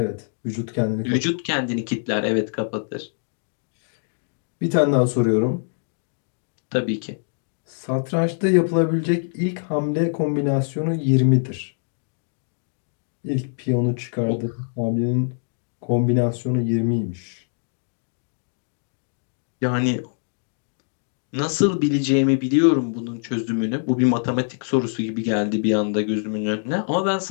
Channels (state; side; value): silent; right; digital silence